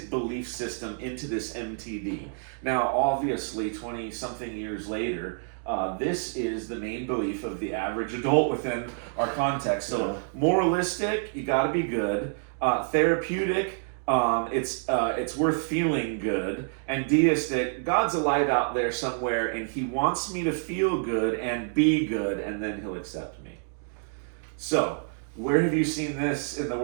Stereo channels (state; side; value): silent; left; digital silence